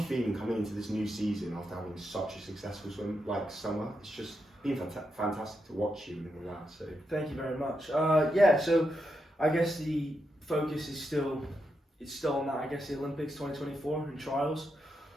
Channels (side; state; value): both; normal; correlation 0.84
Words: feeling coming into this new season after having such a successful summer? It's just been fantastic to watch you and all that. So thank you very much. So I guess the focus is still on that. I guess the Olympics 2024 and trials.